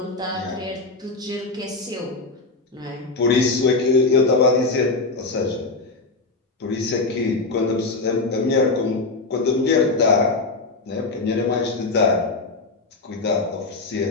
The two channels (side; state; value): right; quieter; 3.6 dB